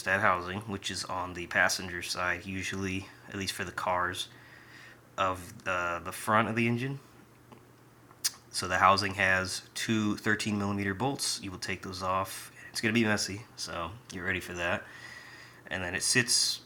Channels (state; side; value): identical; both; correlation 1.00